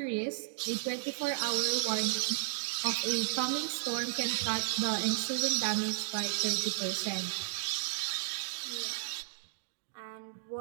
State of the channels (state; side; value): silent; left; digital silence